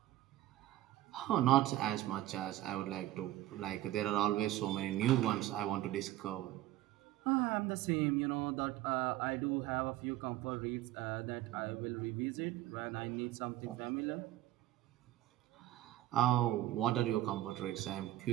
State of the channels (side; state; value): left; quieter; 14.9 dB